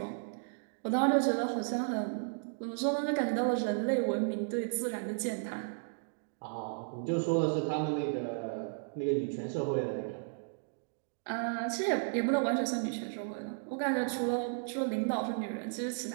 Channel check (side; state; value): left; silent; digital silence